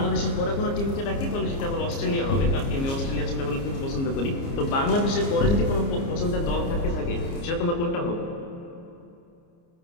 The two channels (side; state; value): right; late; 29 ms